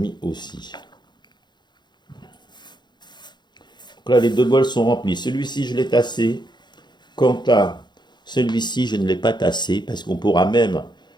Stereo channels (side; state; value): right; late; 0.21 ms